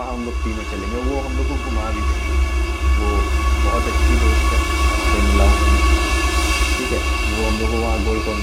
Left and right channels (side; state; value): both; identical; correlation 1.00